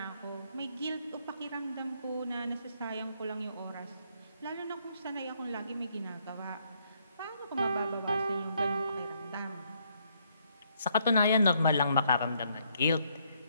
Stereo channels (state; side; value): inverted; both; correlation -0.71